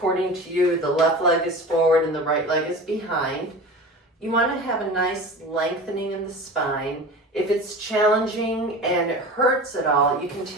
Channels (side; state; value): both; normal; correlation 0.34